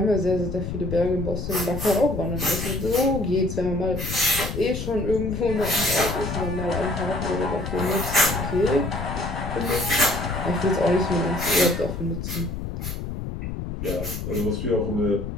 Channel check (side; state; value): left; noise; rumble, 6 dB below the sound